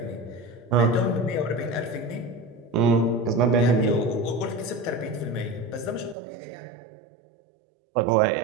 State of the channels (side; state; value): left; drops out; at 6.2 s